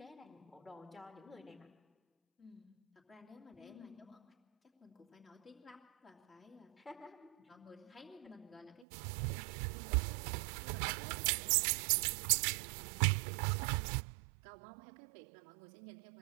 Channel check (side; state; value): left; drops out; at 8.8 s